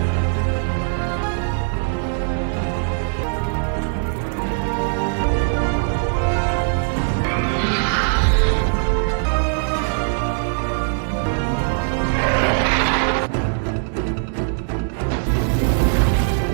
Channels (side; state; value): left; silent; 65 dB below the other